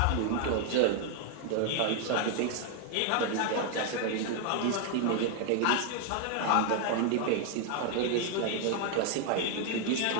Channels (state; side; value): different; both; correlation 0.00